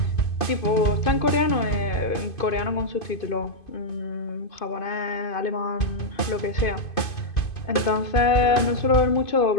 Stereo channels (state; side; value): late; right; 2.5 ms